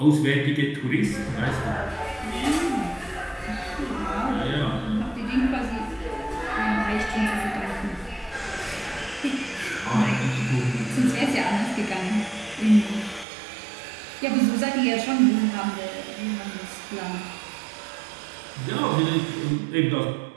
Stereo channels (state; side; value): drops out; left; at 13.2 s